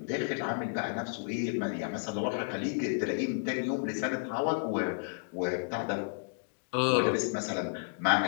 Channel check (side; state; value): right; silent; digital silence